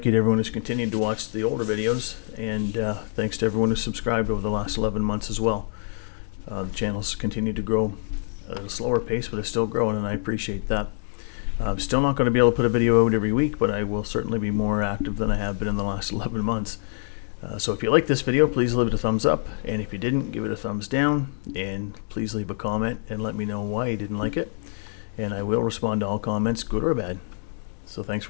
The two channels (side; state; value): right; silent; digital silence